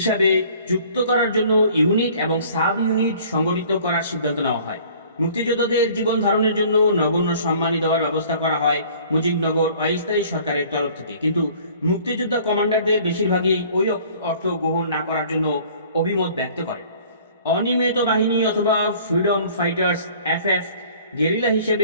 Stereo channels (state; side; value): inverted; both; correlation -0.52